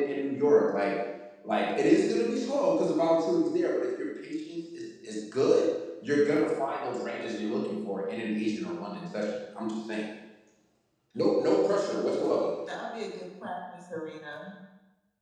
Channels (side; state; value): both; identical; correlation 1.00